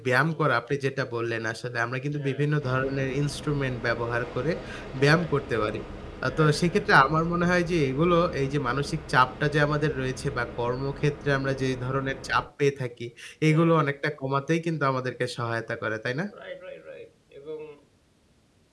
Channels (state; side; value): identical; both; correlation 1.00